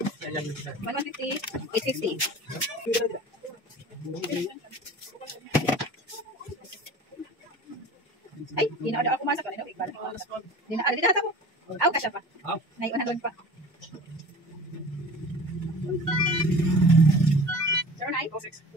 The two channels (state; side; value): normal; both; correlation 0.40